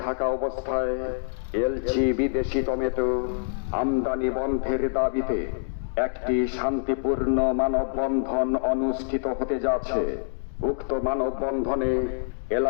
থাকা অবস্থায় এলচি বিদেশি টমেটো আমদানি বন্ধের দাবিতে একটি শান্তিপূর্ণ মানববন্ধন অনুষ্ঠিত হতে যাচ্ছে। উক্ত মানববন্ধনে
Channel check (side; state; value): right; silent; digital silence